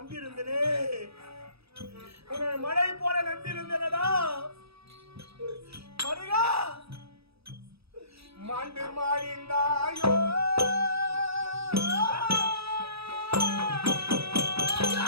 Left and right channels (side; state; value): left; late; 0.78 ms